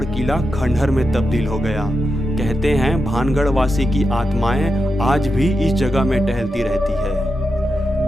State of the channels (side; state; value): both; normal; correlation 0.88